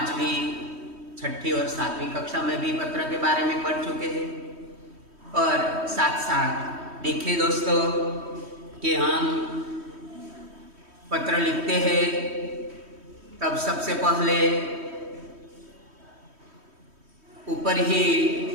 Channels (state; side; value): late; left; 3.1 ms